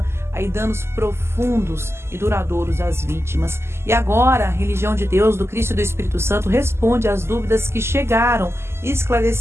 aí danos profundos e duradouros às vítimas. E agora, a Religião de Deus, do Cristo e do Espírito Santo responde às dúvidas que chegaram,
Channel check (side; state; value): left; late; 0.12 ms